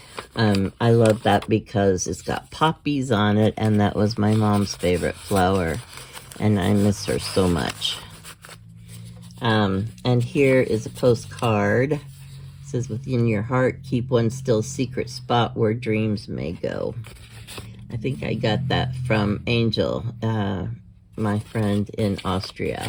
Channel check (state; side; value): identical; both; correlation 1.00